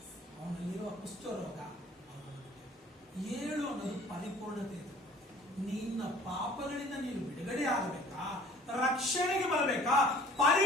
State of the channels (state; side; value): normal; both; correlation 0.51